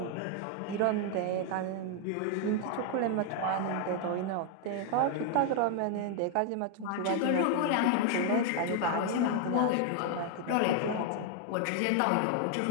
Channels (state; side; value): different; both; correlation 0.00